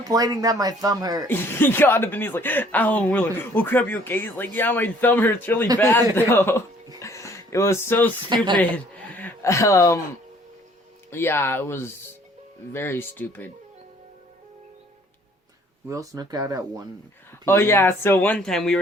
that my thumb hurt. He got up and he's like, ow, and we're like, oh crap, you okay? He's like, yeah, my thumb hurts really bad though. It was so stupid. Yeah, it was very stupid. We all snuck out at 1 p.m. Oh yeah, so one time we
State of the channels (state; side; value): normal; both; correlation 0.58